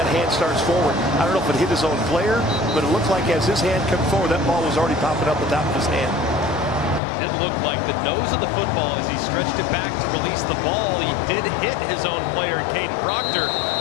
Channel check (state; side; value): drops out; right; at 7.0 s